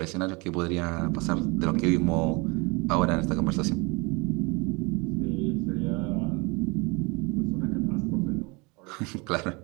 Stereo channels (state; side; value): quieter; left; 28.0 dB